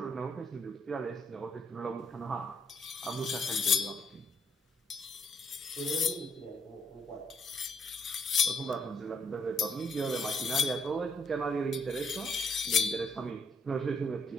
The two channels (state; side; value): normal; both; correlation 0.72